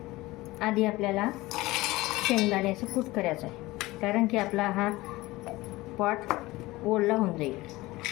आधी आपल्याला शेंगदाण्याचं कूट करायचं आहे, कारण की आपला हा पॉट ओला होऊन जाईल.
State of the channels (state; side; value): quieter; right; 19.6 dB